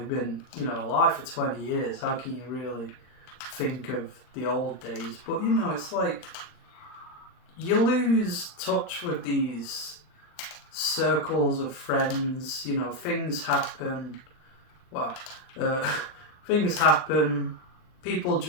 been, alive for 20 years. How can you really think of the old days? But, it's like, you lose touch with these circles of friends, things happen. Well, things happen, people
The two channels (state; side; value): late; right; 39 ms